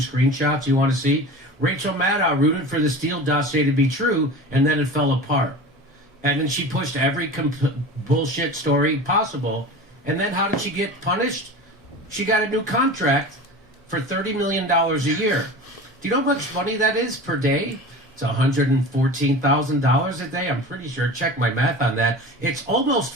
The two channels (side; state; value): both; normal; correlation 0.34